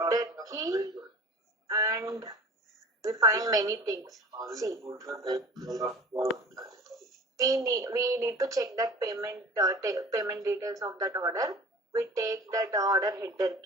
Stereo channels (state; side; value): normal; both; correlation 0.42